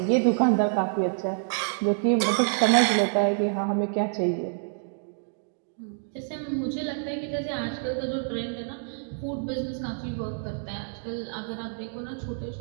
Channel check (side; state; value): left; silent; digital silence